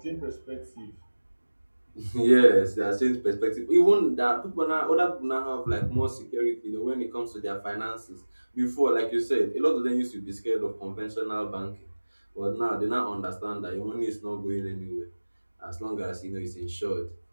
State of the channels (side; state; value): both; inverted; correlation -1.00